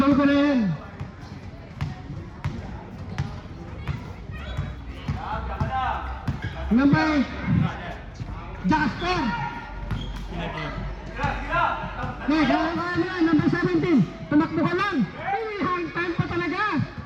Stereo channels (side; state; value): both; identical; correlation 1.00